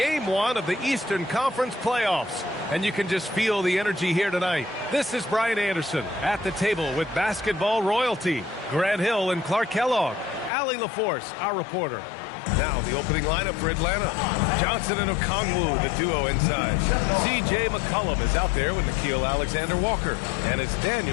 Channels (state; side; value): drops out; right; at 10.5 s